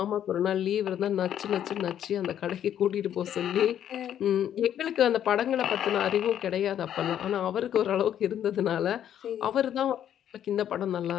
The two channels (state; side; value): quieter; right; 10.2 dB